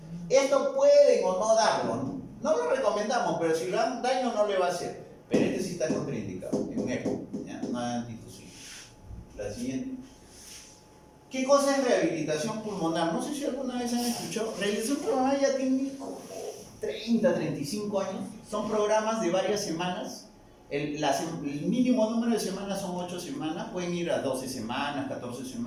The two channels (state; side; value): identical; both; correlation 1.00